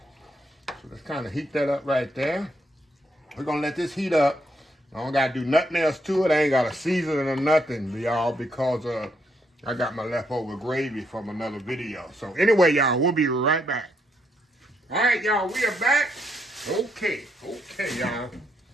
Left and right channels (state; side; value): normal; both; correlation 0.76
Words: So let's kind of heat that up right there. We're going to let this heat up. I don't got to do nothing else to it. I ain't got to season it or nothing, y'all, because I got my leftover gravy from another video. So anyway, y'all, we'll be right back. All right, y'all, we are back. Okay, y'all.